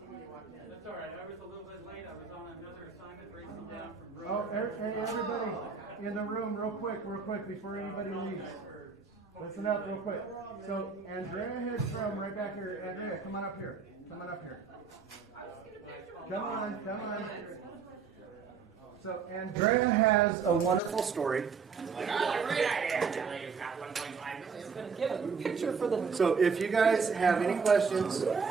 when you walked in. That's all right. I was a little bit late. I was on another assignment racing down from Oh, Brooklyn. hey, everybody in the room, real quick, before anybody leaves. Listen up real quick. So Andrea Hedstrom right back here. Andrea, come on up here. Come on. So Andrea has a wonderful story. So if you guys have any questions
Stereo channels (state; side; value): quieter; left; 5.7 dB